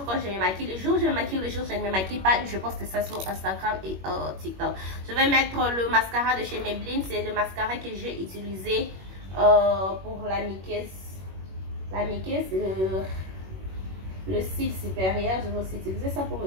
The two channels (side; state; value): left; late; 21 ms